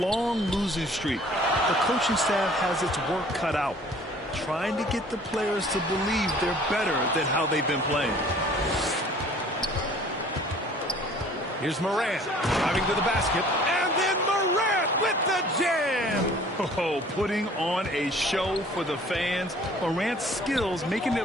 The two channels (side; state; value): both; normal; correlation 0.52